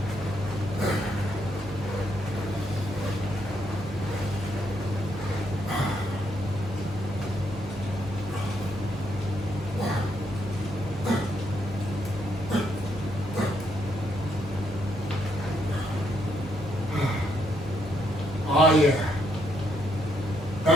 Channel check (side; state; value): both; normal; correlation 0.75